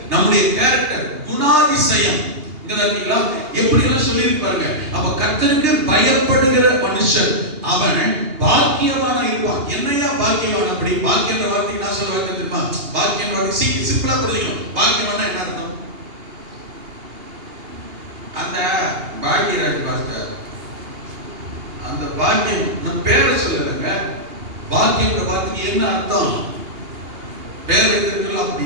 நம்முடைய கேரக்டர், குணாதிசயம் இங்கதான் எப்படி எல்லாம் சொல்லி பாருங்க. அப்ப கர்த்தருக்கு பயப்படுகிற மனுஷன் அவன் பாக்கியவானா இருப்பான். என்னையா பாக்கியவான்? அப்படி பாக்கியன்ற வார்த்தைக்கு நான் சொல்ல வார்த்தை தெரியுமா? பாக்கியன்ற வார்த்தை சிம்பிளா புரிஞ்சுக்கணும். பாக்கியவானா என்ன அர்த்தம்? அந்த பாக்கியராஜ் பாஸ்டர், அந்த பாக்கியம் நான் பேரை சொல்லலைங்க. பாக்கியன்ற வார்த்தைக்கு என்ன அர்த்தம்? பேர் வைத்திருக்கலாம்.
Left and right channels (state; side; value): late; left; 2.8 ms